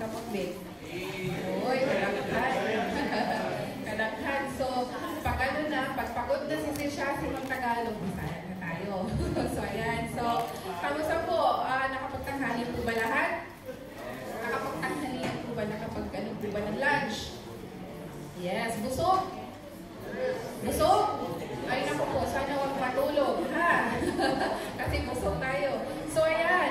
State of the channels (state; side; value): identical; both; correlation 1.00